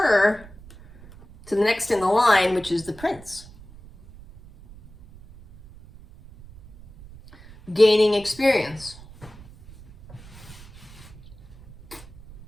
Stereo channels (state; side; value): noise; right; rumble, 21 dB below the sound